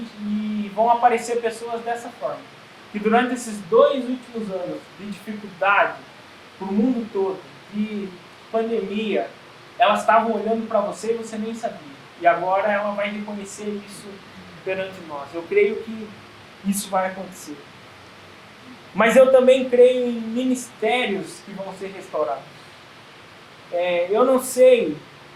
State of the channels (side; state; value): both; identical; correlation 1.00